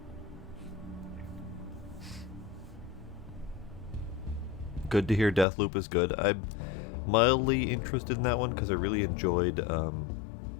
Good to hear Deathloop is good. I'm mildly interested in that one because I really enjoyed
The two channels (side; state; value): right; drops out; at 5.5 s